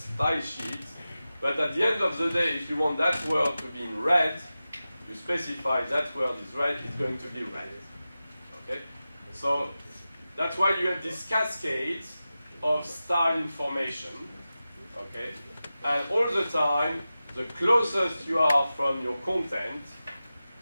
sheets, but at the end of the day, if you want that word to be in red, you specify that word is red, it's going to be red. Okay? So that's why you have this cascade of style information. Okay? And all the time, the closest you are from your content,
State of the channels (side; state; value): both; inverted; correlation -0.94